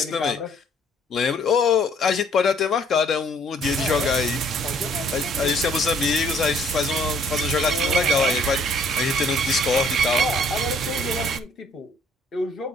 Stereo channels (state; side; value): normal; both; correlation 0.61